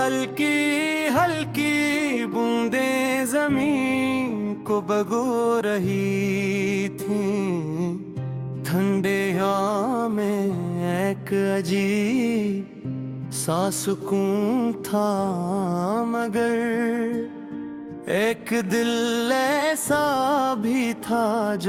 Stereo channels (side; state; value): both; identical; correlation 1.00